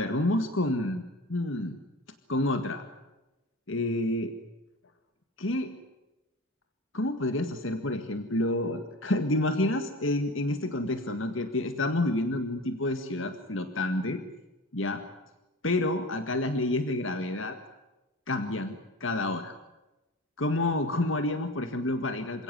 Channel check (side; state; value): both; normal; correlation 0.35